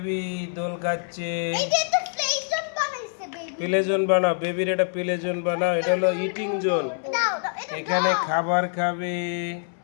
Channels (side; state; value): right; silent; 62 dB below the other